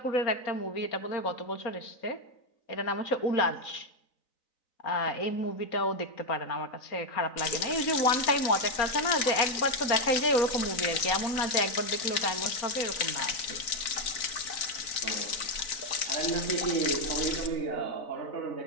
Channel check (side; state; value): right; late; 3.9 ms